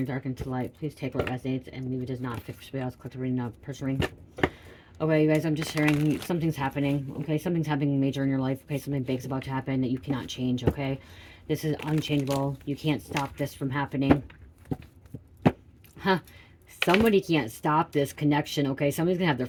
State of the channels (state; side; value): identical; both; correlation 1.00